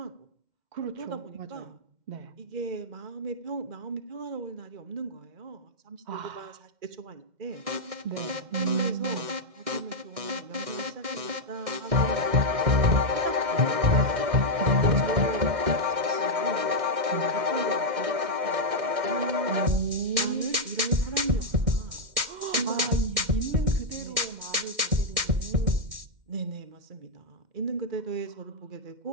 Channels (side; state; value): left; late; 1.6 ms